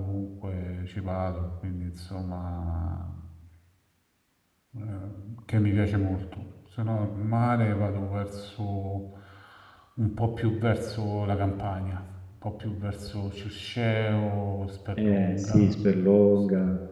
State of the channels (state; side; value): identical; both; correlation 1.00